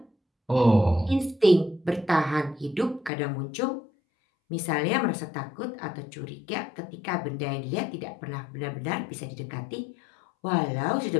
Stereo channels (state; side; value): drops out; right; at 3.1 s